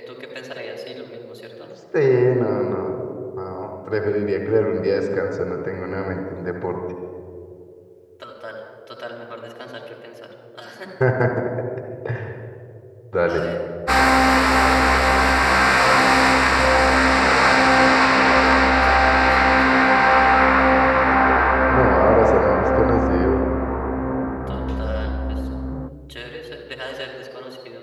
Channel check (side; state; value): both; identical; correlation 1.00